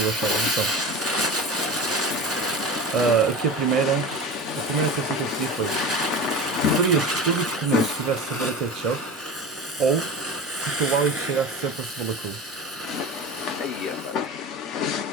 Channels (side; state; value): both; normal; correlation 0.30